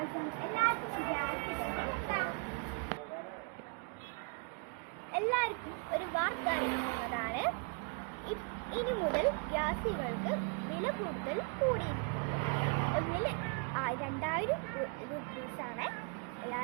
എല്ലാവർക്കും ഗ്യാസ്. എന്താ എല്ലാവർക്കും ഒരു വാർത്ത അറിയിക്കുന്നതാണ്. ഇനി മുതൽ ഗ്യാസുകൾക്ക് വില കൂടുതൽ കൂടിയിരിക്കുന്നു. ഒന്നിൽ 2000 രൂപീസാണ്.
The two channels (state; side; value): quieter; left; 36.0 dB